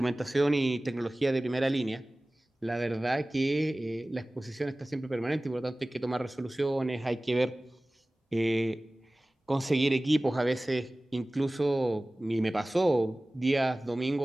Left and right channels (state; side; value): normal; both; correlation 0.98